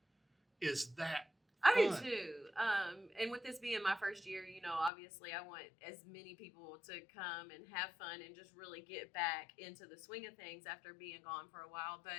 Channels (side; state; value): right; drops out; at 4.9 s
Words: is that I do fun. too. And with this being my first year, obviously I want as many people to come and have fun and just really get back into the swing of things after being gone for a while.